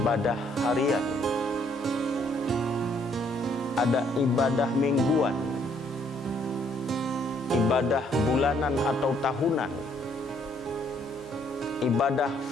harian, ada ibadah mingguan, ibadah bulanan atau tahunan, ibadah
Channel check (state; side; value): normal; both; correlation 0.67